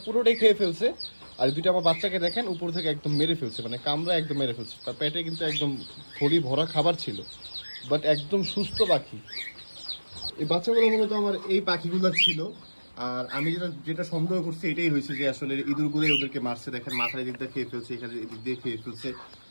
পুরোটাই খেয়ে ফেলছে। আর 2টা আমার বাচ্চাকে দেখেন উপর থেকে একদম মেরে ফেলছে, মানে কামড়া একদম মেরে ফেলছে। তার পেটে কিন্তু একদম থলি ভরা খাবার ছিল, বাট একদম সুস্থ পাখি। এই বাচ্চাগুলো মূলত আমার এই পাখিগুলো ছিল। আর আমি যেটা যেটা সন্দেহ করছি এটাই হয়েছে যে আসলে ইঁদুরগুলোই ওদেরকে মারছে। দেখেন মাথার দিক দিয়ে খেয়ে ফেলছে, এখানে এদিক দিয়ে খেয়ে ফেলছে।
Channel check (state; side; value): inverted; both; correlation -1.00